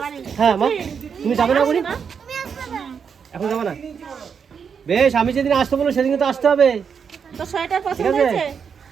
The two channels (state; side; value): quieter; left; 6.7 dB